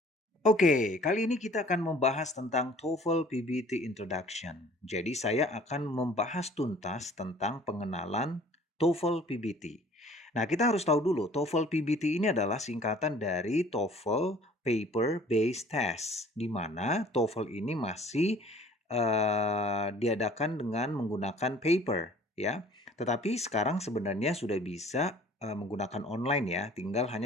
Oke, kali ini kita akan membahas tentang TOEFL PBT Introduction. Jadi saya akan membahas tuntas tentang pengenalan TOEFL PBT. Nah, kita harus tahu dulu, TOEFL PBT ini adalah singkatan dari TOEFL Paper Based Test, di mana TOEFL ini masih diadakan dengan menggunakan paper, ya. Tetapi sekarang sebenarnya sudah bisa menggunakan online ya, tinggal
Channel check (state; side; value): normal; both; correlation 0.52